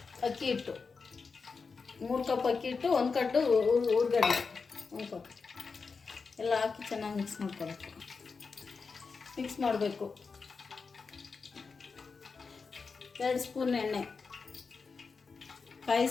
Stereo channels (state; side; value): quieter; right; 4.9 dB